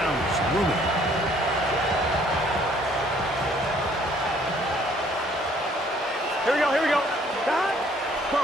it's looming. Here we go, here we go.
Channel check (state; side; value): normal; both; correlation 0.61